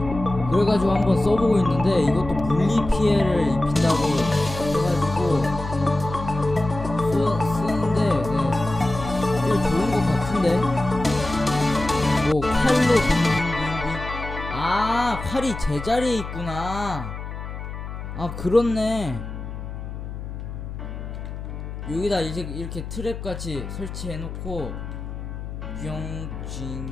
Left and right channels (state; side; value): noise; left; hum, 8 dB below the sound